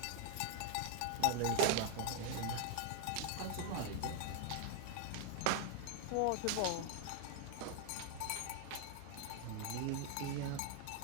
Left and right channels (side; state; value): both; different; correlation 0.00